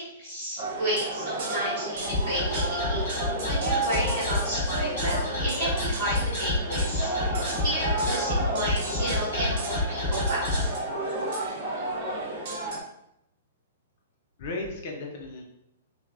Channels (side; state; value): both; inverted; correlation -0.36